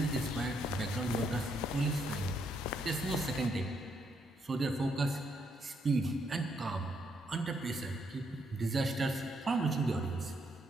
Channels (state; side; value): normal; both; correlation 0.75